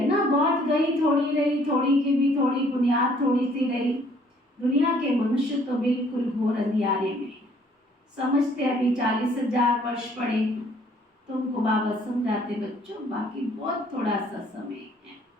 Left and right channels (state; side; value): normal; both; correlation 0.61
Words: ना, बहुत गई थोड़ी रही, थोड़ी की भी थोड़ी बुनियाद थोड़ी सी रही। दुनिया के मनुष्य तो बिल्कुल घोर अंधियारे में है, समझते अभी 40,000 वर्ष पड़े। तुमको बाबा समझाते बच्चों बाकी बहुत थोड़ा सा समय है,